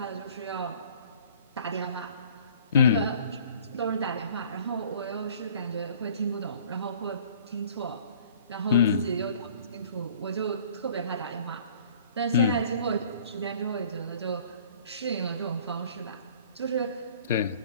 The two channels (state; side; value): inverted; both; correlation -0.51